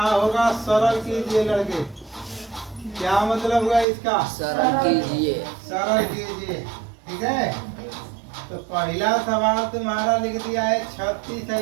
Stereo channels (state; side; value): drops out; left; at 3.9 s